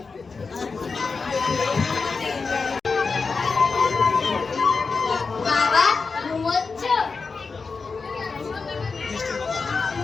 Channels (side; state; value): right; quieter; 4.6 dB